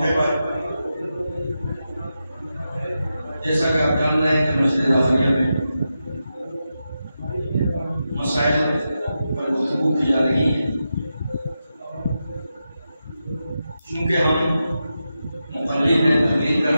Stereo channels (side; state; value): both; inverted; correlation -0.89